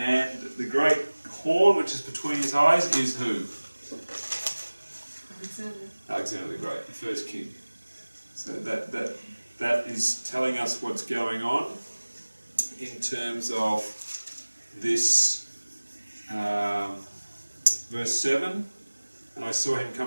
the great horn which is between his eyes is who? Alexander the Great, the first king. So that is telling us what's going on in terms of this verse 7. And I saw him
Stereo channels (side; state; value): both; inverted; correlation -1.00